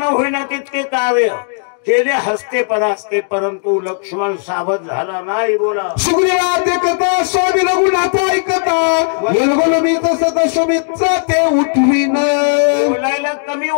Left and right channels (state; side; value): silent; right; digital silence